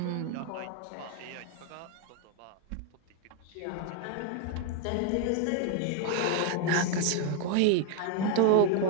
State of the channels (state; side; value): different; both; correlation 0.01